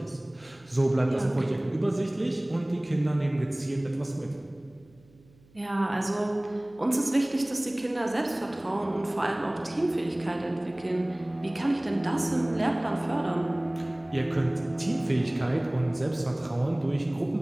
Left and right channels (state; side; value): noise; right; hum, 29 dB below the sound